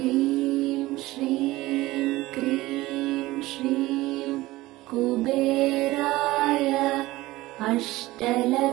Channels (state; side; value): quieter; left; 18.5 dB